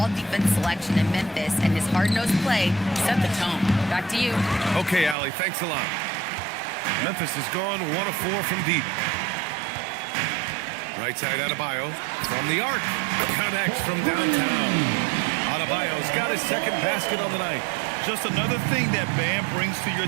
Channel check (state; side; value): drops out; left; at 5.2 s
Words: selection in Memphis, and his hard-nosed play set the tone. Back to you. Okay, Allie, thanks a lot. Memphis has gone 1 of 4 from deep. Right side Adebayo from the arc. Connects from downtown. Adebayo's got his second basket on the night. Just another thing that Bam brings to